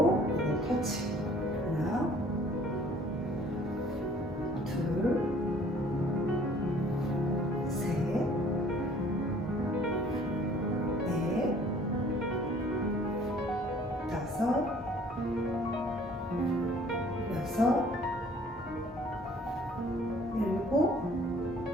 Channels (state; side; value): normal; both; correlation 0.55